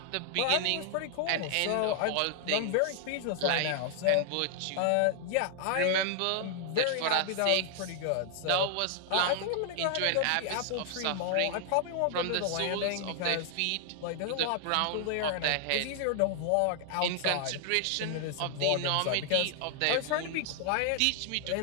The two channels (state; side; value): different; both; correlation 0.00